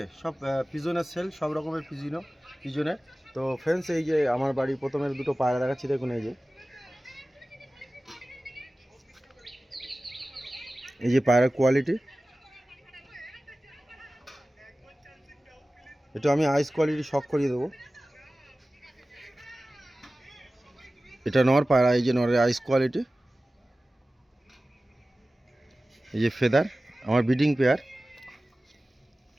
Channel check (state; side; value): normal; both; correlation 0.96